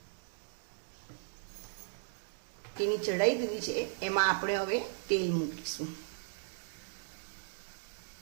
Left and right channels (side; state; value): left; silent; digital silence